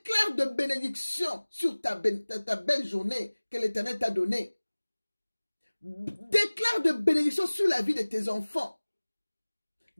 de bénédiction sur ta belle journée que l'Éternel t'a donnée. Déclare de bénédiction sur la vie de tes enfants.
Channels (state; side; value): inverted; both; correlation -1.00